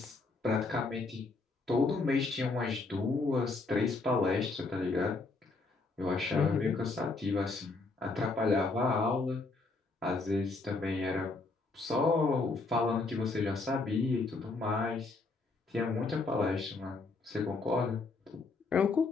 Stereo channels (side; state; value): right; quieter; 3.7 dB